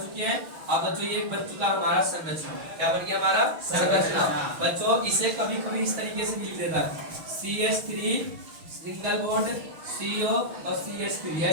हैं। अब बच्चों ये बन चुका हमारा संरचना, क्या बन गया हमारा संरचना। बच्चों इसे कभी कभी इस तरीके से लिख देता है, CH3 सिंगल बॉन्ड CO और CH3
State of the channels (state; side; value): late; left; 6.3 ms